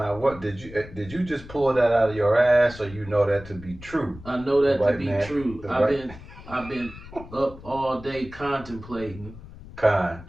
what did you just pull that out of your ass, or you know that to be true? I know The that to white be man, true. the I've white been I've been up all day contemplating con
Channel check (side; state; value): left; noise; rumble, 16 dB below the sound